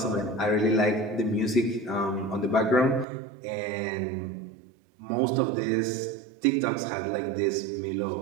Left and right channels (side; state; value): left; drops out; at 3.1 s